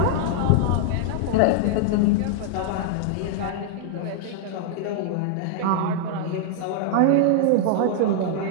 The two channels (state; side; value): different; both; correlation -0.01